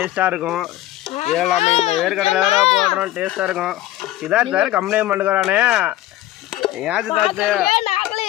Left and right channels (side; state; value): right; quieter; 15.0 dB